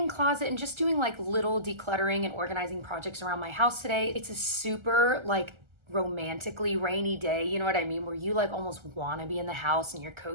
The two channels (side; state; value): left; late; 1.3 ms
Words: closet and just doing like little decluttering and organizing projects around my house today. It's a super like romantically rainy day, you know what I mean, where you like almost want to be in the house and you're